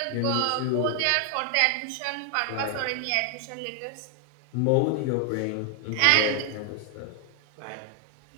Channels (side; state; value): both; different; correlation 0.00